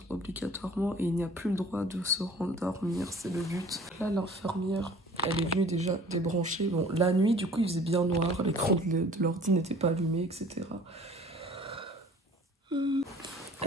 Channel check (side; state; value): both; normal; correlation 0.49